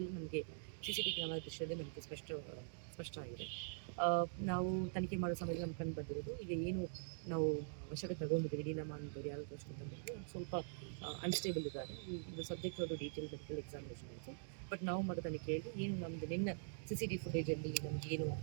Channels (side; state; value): left; silent; digital silence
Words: ನಮಗೆ CCTV ಕ್ಯಾಮರಾ ದೃಶ್ಯದಲ್ಲಿ ನಮಗೆ ಸ್ಪಷ್ಟ ಆಗಿದೆ. ನಾವು ತನಿಖೆ ಮಾಡೋ ಸಮಯದಲ್ಲಿ ನಮ್ಗೆ ಕಂಡು ಬಂದಿರೋದು ಈಗ ಏನು ನಾವು ವಶಕ್ಕೆ ತಗೊಂಡಿದ್ದೀವಿ ಲೀಲಮ್ಮ ಅಂತವ್ರು ಯಾರು ವಶಕ್ಕೆ ತಂದಿದ್ದು ಸ್ವಲ್ಪ ಅನ್ಸ್ಟೇಬಲ್ ಇದ್ದಾರೆ. ಇದು ಸಬ್ಜೆಕ್ಟ್ ಅವರು ಡೀಟೇಲ್ ಮೆಡಿಕಲ್ ಎಕ್ಸಾಮಿನೇಷನ್ ಆಯಿತು. ಬಟ್ ನಾವು ಮಾಡೋ ತನಿಖೆಯಲ್ಲಿ ಏನು ನಮ್ಮದು ನಿನ್ನ CCTV ಫುಟೇಜಲ್ಲಿ ನಮ್ಗೆ ಏನು